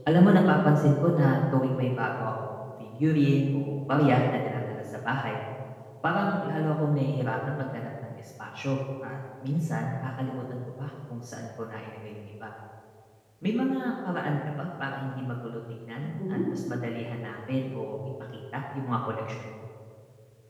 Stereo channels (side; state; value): both; identical; correlation 1.00